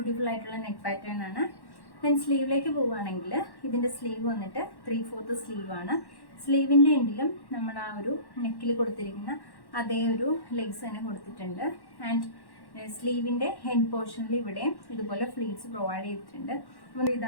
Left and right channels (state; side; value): late; right; 1.1 ms